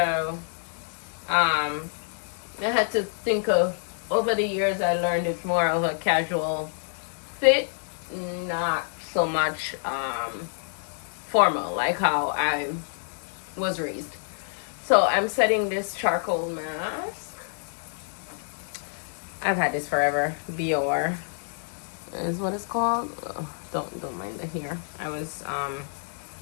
I had to think of, over the years, I learned it's more of a casual fit, not so much formal like how I was raised. So I'm setting this charcoal mask. I've had this forever. Bior is what it's called. Oh, don't mind the hair. I was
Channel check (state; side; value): silent; right; digital silence